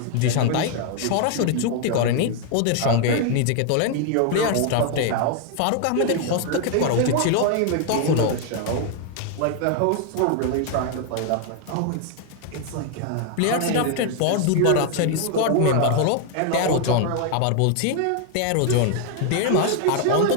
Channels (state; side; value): different; both; correlation 0.00